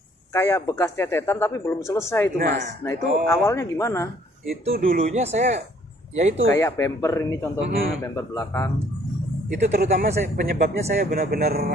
kayak bekas cecetan tapi belum selesai itu Mas. Nah itu awalnya gimana? Itu dulunya saya ya itu Kayak bumper ini contohnya, bumper belakang. itu terutama penyebabnya saya benar-benar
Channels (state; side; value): normal; both; correlation 0.61